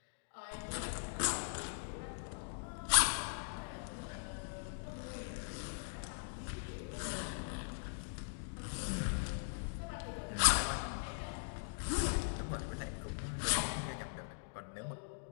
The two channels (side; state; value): right; silent; digital silence